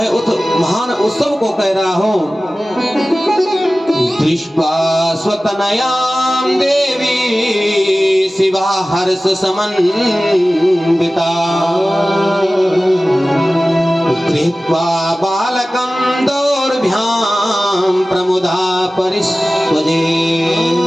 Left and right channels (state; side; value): normal; both; correlation 0.97